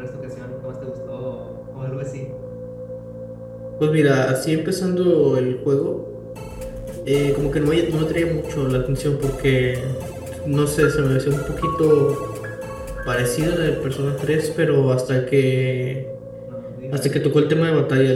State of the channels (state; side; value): identical; both; correlation 1.00